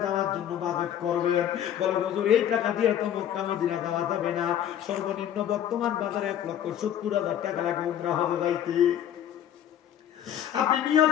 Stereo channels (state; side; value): quieter; right; 10.3 dB